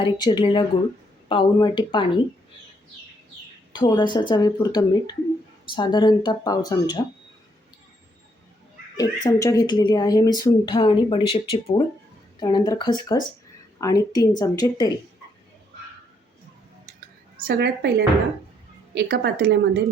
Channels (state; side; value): normal; both; correlation 0.72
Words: चिरलेला गूळ, पाऊण वाटी पाणी, थोडंसं चवीपुरतं मीठ, साधारणतः पाव चमचा, 1 चमचा घेतलेली आहे मी सुंठ आणि बडीशेपची पूड, त्यानंतर खसखस आणि 3 चमचे तेल. सगळ्यात पहिल्यांदा एका पातेल्यामध्ये